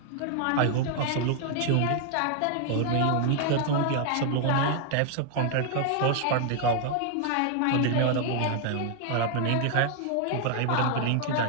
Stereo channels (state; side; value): different; both; correlation 0.00